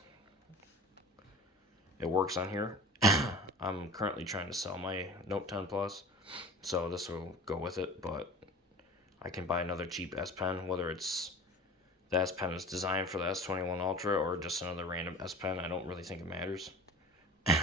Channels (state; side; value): normal; both; correlation 0.39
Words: It works on here. I'm currently trying to sell my Note 10 Plus, so this will go with it, but I can buy another cheap S Pen, whether it's the S Pen is designed for the S21 Ultra or just another random S Pen. I don't really think it matters.